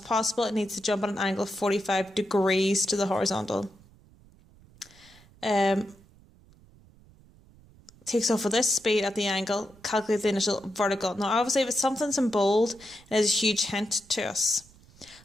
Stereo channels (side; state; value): right; noise; rumble, 26 dB below the sound